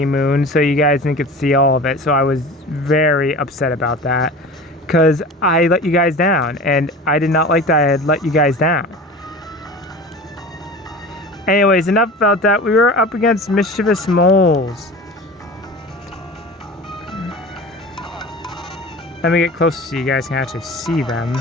Moon, so you guys didn't get to see all of it. So I was very upset about that, because I let you guys down, and I did not like that I had let you guys down. Anyways, enough about that. We were up against mischievous moles. Let me get closer so you guys can actually see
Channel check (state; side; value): normal; both; correlation 0.36